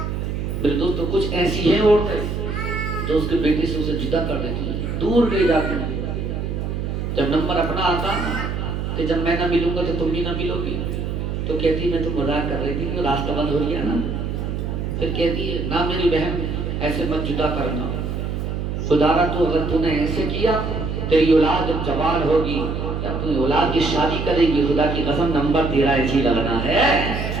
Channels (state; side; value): noise; right; hum, 3 dB below the sound